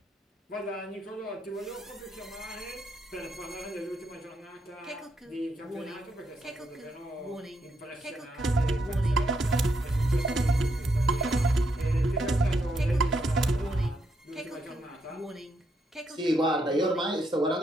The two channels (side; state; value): both; normal; correlation 0.78